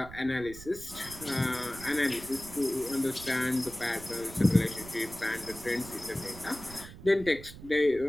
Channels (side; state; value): right; noise; rumble, 16 dB below the sound